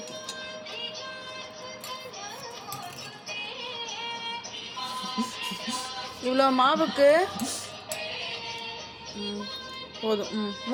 இவ்வளோ மாவுக்கு போதும்.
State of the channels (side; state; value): both; identical; correlation 1.00